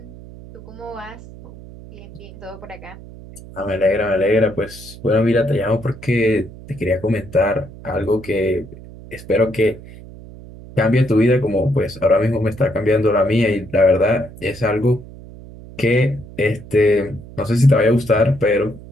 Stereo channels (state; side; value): noise; right; hum, 17 dB below the sound